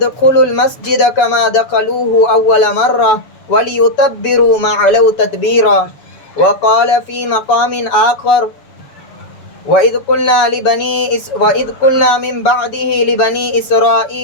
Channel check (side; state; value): right; late; 7.0 ms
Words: المسجد كما دخلوه أول مرة وليتبروا ما علوا تتبيرا. وقال في مقام آخر وإذ قلنا من بعده لبني